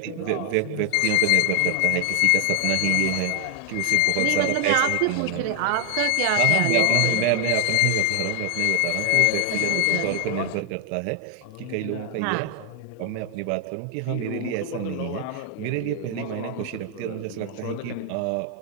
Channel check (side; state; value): both; different; correlation 0.00